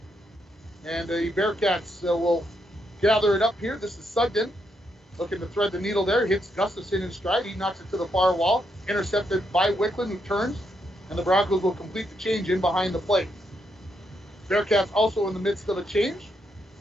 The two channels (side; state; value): both; normal; correlation 0.79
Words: And the Bearcats will gather it up here. This is Sugden looking to thread the needle there. Hits Gustafson in stride. He knocks it to the far wall. Intercepted by Wickland, who turns. And the Broncos will complete the change in behind the plate. Bearcats also in the midst of a change.